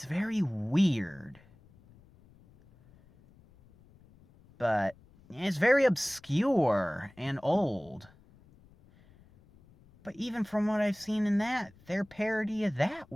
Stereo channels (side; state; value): left; noise; rumble, 27 dB below the sound